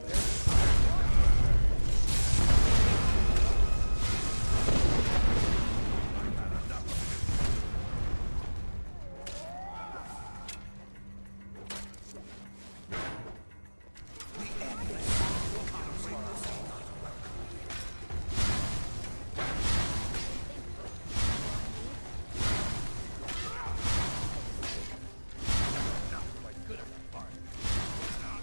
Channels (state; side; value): inverted; both; correlation -1.00